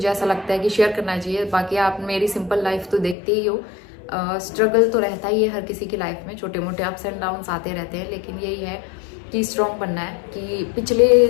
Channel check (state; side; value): drops out; right; at 3.2 s